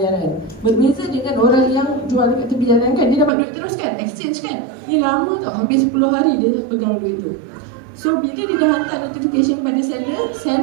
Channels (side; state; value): left; drops out; at 3.3 s